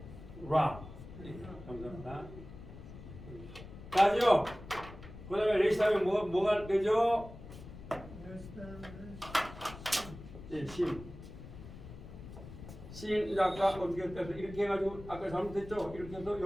라. 네, 감사합니다. 나죠? 그 다음에 레시 하면 뭐가 되죠? 네, 심. 심, 이제 아까 어떻게 해서 이렇게 해가지고 아까 잘못했죠? 이렇게 해서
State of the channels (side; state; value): left; noise; rumble, 14 dB below the sound